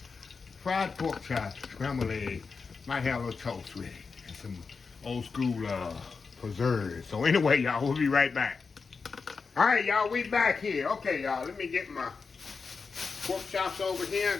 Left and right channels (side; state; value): right; quieter; 4.9 dB